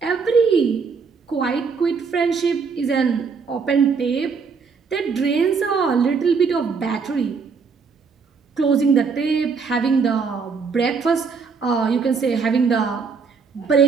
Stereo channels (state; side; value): quieter; left; 5.3 dB